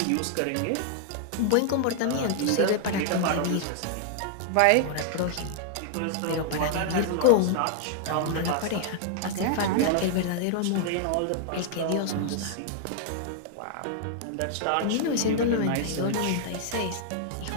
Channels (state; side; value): different; both; correlation -0.01